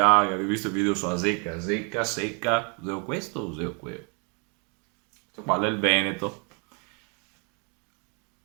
ho visto il video sulla zecca, zecca, secca, useo questo o useo quello? Questo qua è il Veneto.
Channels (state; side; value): quieter; left; 35.4 dB